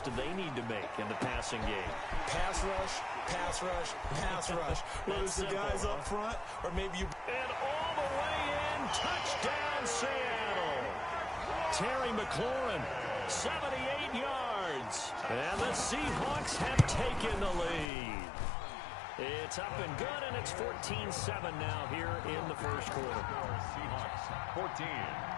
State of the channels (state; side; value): drops out; right; at 17.9 s